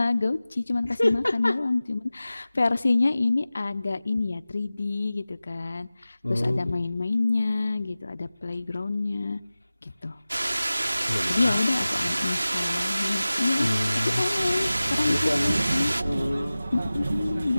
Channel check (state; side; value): inverted; both; correlation -0.97